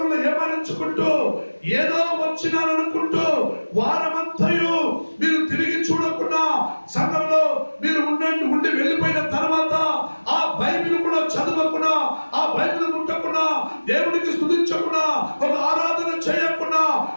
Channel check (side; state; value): both; inverted; correlation -1.00